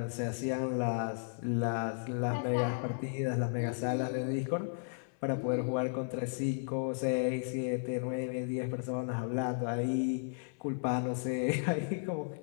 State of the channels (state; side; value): silent; right; 55 dB below the other